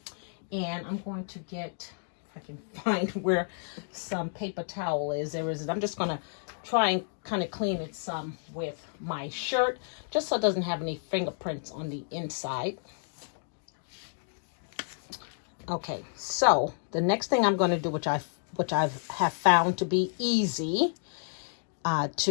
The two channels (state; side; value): silent; right; digital silence